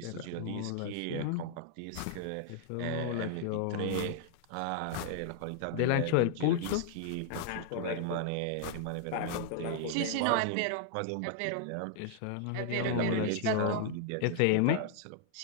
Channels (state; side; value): different; both; correlation -0.01